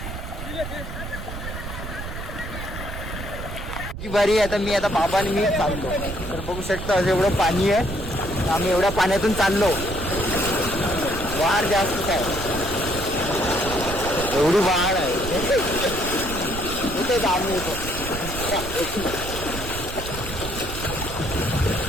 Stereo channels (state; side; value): noise; right; rumble, 8 dB below the sound